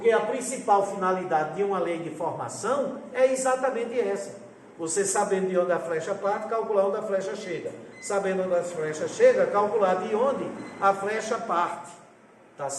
a principal finalidade de uma lei de formação é exatamente essa. Você sabendo de onde a flecha parte, calcular onde a flecha chega. Sabendo onde a flecha chega, calcular de onde a flecha parte. Tá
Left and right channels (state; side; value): identical; both; correlation 1.00